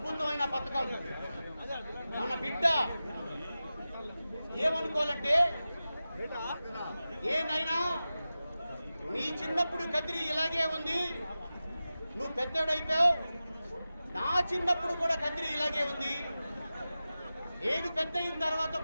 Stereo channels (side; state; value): both; inverted; correlation -0.94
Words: పథకం. మన బిడ్డ ఏమనుకోవాలంటే, ఏనైనా నీ చిన్నప్పుడు కదిరి ఇలాగే ఉంది, నువ్వు పెద్దోడైపోయావు, నా చిన్నప్పుడు కూడా కదిరి ఇలాగే ఉంది, నేను పెద్ద అయిన తర్వాత